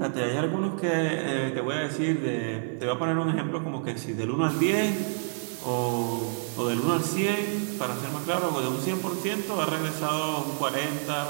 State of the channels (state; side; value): silent; left; digital silence